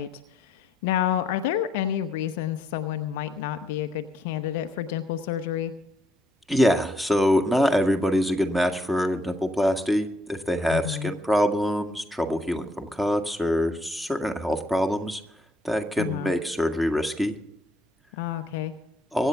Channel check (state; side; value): normal; both; correlation 0.72